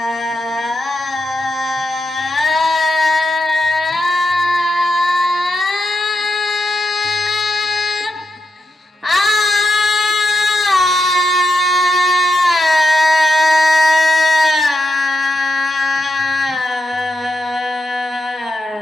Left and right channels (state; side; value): normal; both; correlation 0.85